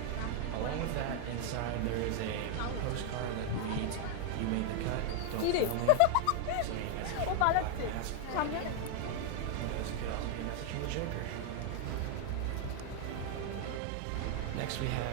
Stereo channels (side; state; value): both; different; correlation 0.01